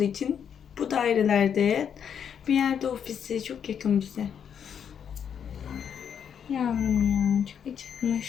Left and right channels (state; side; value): quieter; right; 8.0 dB